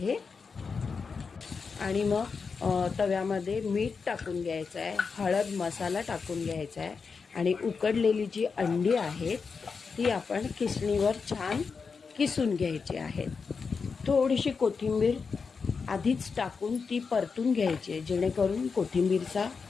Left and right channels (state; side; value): quieter; right; 5.2 dB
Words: आणि मग तव्यामध्ये मीठ टाकून घ्यायचं आहे, हळद मसाला टाकून घ्यायचा आहे आणि उकडलेली जी अंडी आहेत ती आपण किसणीवर छान किसून घ्यायची आहेत. थोडीशी कोथिंबीर आधीच टाकून ती परतून घ्यायची आहे, जेणेकरून कोथिंबीरचा